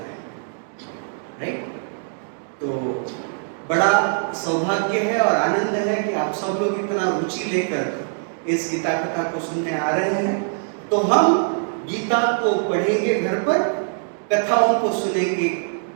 है, राइट। तो बड़ा सौभाग्य है और आनंद है कि आप सब लोग इतना रुचि लेकर इस गीता कथा को सुनने आ रहे हैं। तो हम गीता को पढ़ेंगे घर पर, कथाओं को सुनेंगे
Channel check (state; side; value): silent; left; digital silence